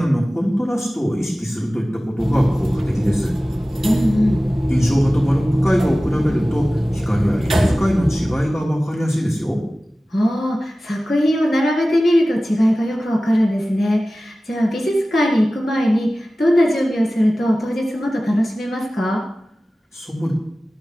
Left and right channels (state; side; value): normal; both; correlation 0.96